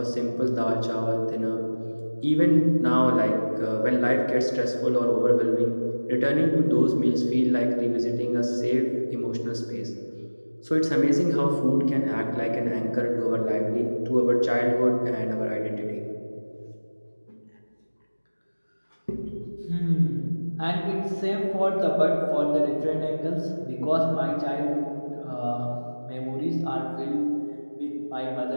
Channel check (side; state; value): both; inverted; correlation -1.00